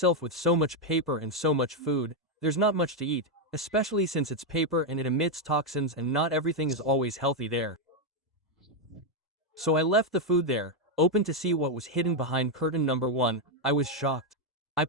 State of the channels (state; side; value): normal; both; correlation 0.02